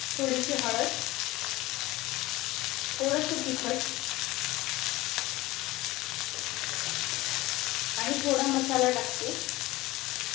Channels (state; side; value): quieter; right; 19.1 dB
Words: थोडीशी हळद, थोडंसं तिखट आणि थोडा मसाला टाकते।